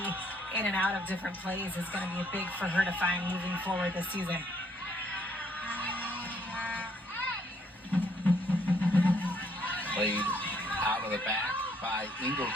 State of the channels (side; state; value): both; normal; correlation 0.68